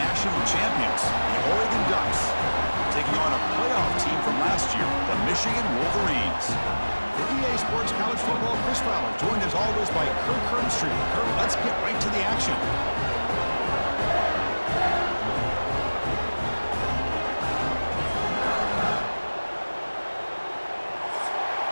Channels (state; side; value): inverted; both; correlation -1.00